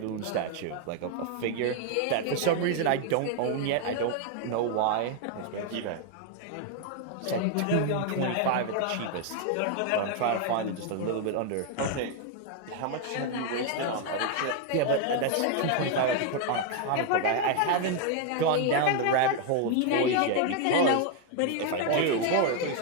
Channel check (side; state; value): both; different; correlation 0.00